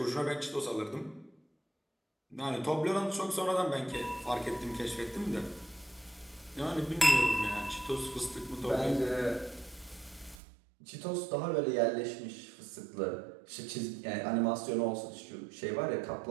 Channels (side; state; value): left; drops out; at 10.4 s